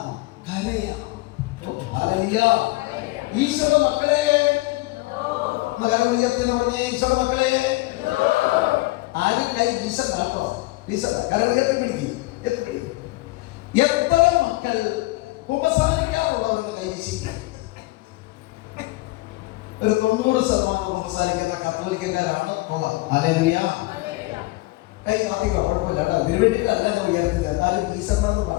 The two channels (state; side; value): quieter; right; 21.1 dB